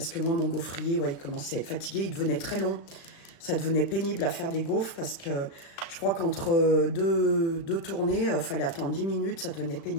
que moi, mon gaufrier, ouais, il commençait à être fatigué, il devenait très long, ça devenait pénible à faire des gaufres, parce que je crois qu'entre deux tournées, fallait attendre 10 minutes, ça devenait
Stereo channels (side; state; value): right; late; 36 ms